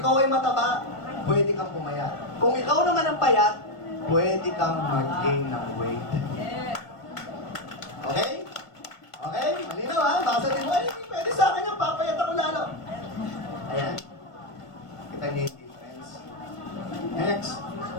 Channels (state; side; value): late; right; 1.5 ms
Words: ay mataba, pwede kang pumayat. Kung ikaw naman ang payat, pwede kang mag-gain ng weight. Okay? Okay? Malinaw ha? Baka sabihin mo, ay, hindi pwede sa akin yung papayat ako lalo. Ayan. Kita niyo yung difference. Next.